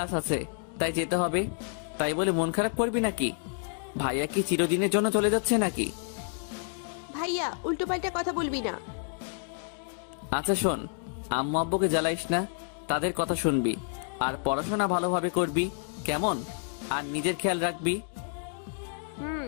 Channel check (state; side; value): silent; right; 56 dB below the other